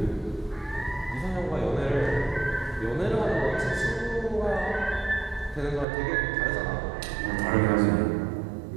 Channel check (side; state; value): left; drops out; at 5.9 s